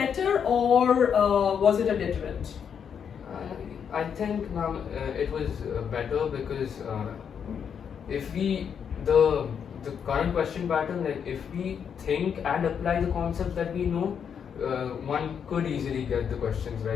or was it a deterrent? I think, ma'am, it was better because if the current question pattern, like if we think and apply the concepts that we know, one could easily get the questions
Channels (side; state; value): right; quieter; 7.5 dB